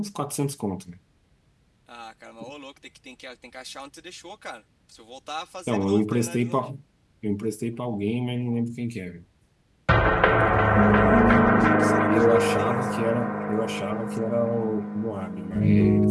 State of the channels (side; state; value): both; identical; correlation 1.00